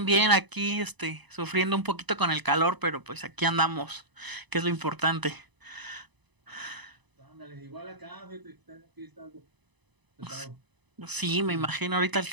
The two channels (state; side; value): late; left; 1.0 ms